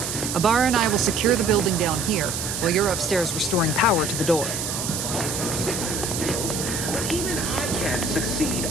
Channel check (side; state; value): right; noise; hiss, 4 dB below the sound